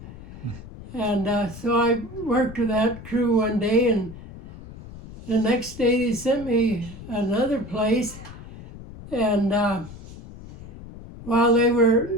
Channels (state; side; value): noise; left; rumble, 15 dB below the sound